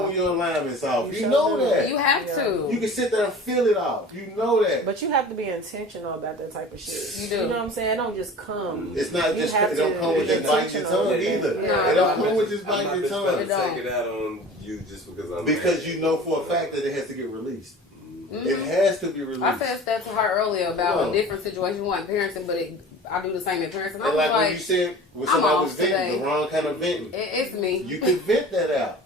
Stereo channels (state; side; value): normal; both; correlation 0.40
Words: when your alignment's off. You sure know do. that. You have to. You can sit there and feel it off. You know that. But you have to be intentional about that type of shit. You do. You know what I'm saying? It don't just come. It's not You just have it don't to come with be just biting your intentional tongue with it. either. No, It don't no, come with just I'm biting not your just tongue. about to don't. take it out on you just because I'm Because mad. you know for a fact that it has to get released. It has to be released. I said that to her earlier about Yeah. a different situation, one parenting, but I do the same in parenting. I And was like when like, you said when I'm somebody was off venting, today. the wrong kind of venting. it's me. You can vent that out,